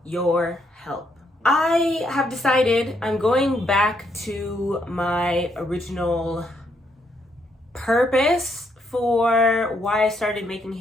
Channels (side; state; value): both; normal; correlation 0.74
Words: your help. I have decided I'm going back to my original purpose for why I started making